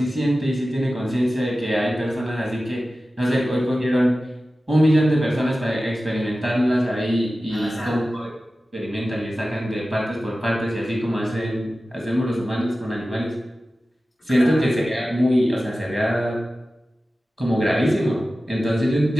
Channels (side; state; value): both; normal; correlation 0.95